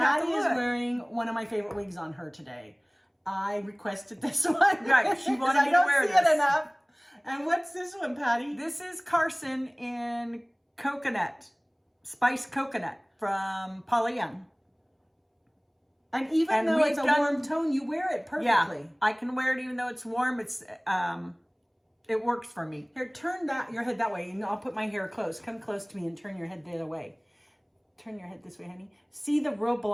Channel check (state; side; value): identical; both; correlation 1.00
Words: to Patti look. is wearing one of my favorite wigs on her today. I requested this one. Right. She wanted me to wear this. I don't see it enough. And what's this one, Patti? This is Carson in coconut, spiced coconut from Paula. And even though it's a warm tone, you wear it perfectly. Yeah, I can wear it even though it's warm. It works for me. Here, turn your head that way, and I'll put my hair close. Come close to me and turn your head the other way. Turn your head this way, honey. See the real